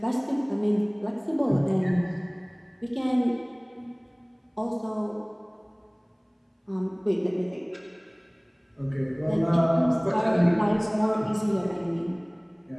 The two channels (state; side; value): identical; both; correlation 1.00